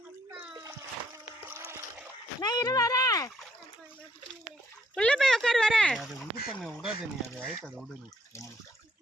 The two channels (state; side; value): normal; both; correlation 0.69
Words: நான் இரு வரேன். உள்ள போய் உட்காரு வரேன். அது இது பண்ண விடாத நீ அது ஆயிட்டு அதை விடு நீ.